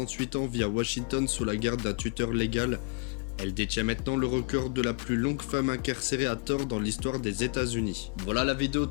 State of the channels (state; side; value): quieter; right; 30.9 dB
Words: ans, vit à Washington sous la garde d'un tuteur légal. Elle détient maintenant le record de la plus longue femme incarcérée à tort dans l'histoire des États-Unis. Voilà, la vidéo